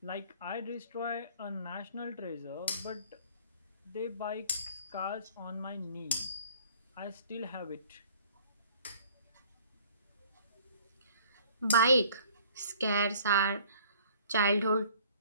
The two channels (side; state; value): both; inverted; correlation -0.53